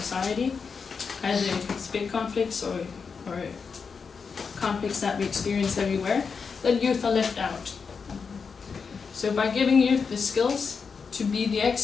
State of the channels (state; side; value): quieter; right; 5.5 dB